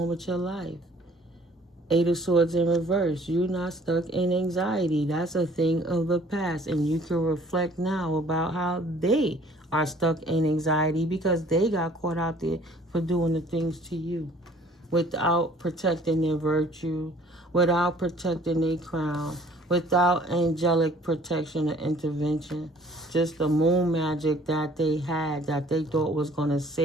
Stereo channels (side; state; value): both; normal; correlation 0.55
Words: with your life. 8 of Swords in reverse. You're not stuck in anxiety. That's a thing of the past, and you can reflect now about how they are stuck in anxiety because they got caught out there for doing the things to you without protecting their virtue, without protecting their crown, without angelic protection or intervention. Just the moon magic that they had that they thought was going to